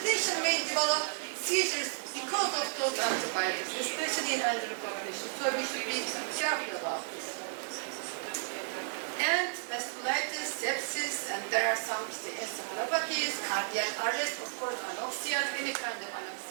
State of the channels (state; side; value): silent; left; digital silence